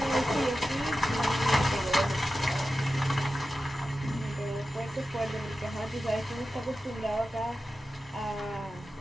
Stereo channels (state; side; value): normal; both; correlation 0.93